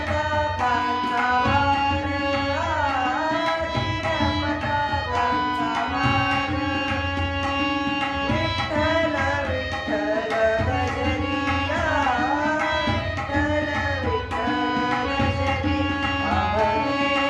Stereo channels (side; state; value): both; identical; correlation 1.00